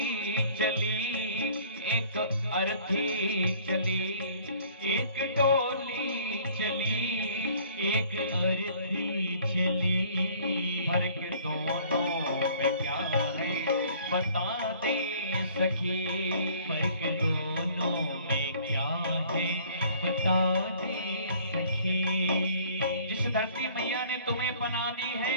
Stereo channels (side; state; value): both; inverted; correlation -0.54